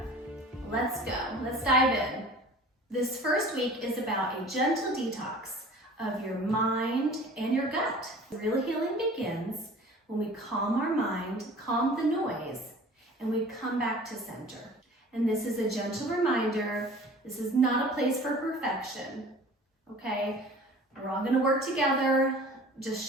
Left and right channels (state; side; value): normal; both; correlation 0.44